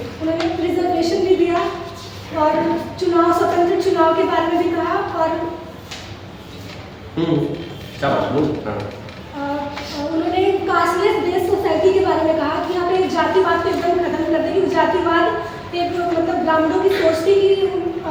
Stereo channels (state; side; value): identical; both; correlation 1.00